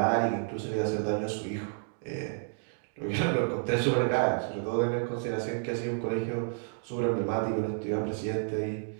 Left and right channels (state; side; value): silent; left; 57 dB below the other